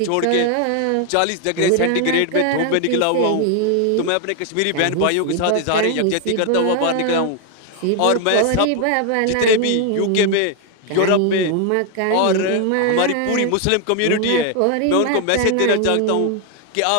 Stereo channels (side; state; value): both; different; correlation 0.01